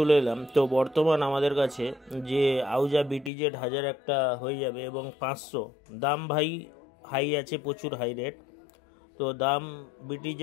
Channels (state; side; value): drops out; right; at 3.3 s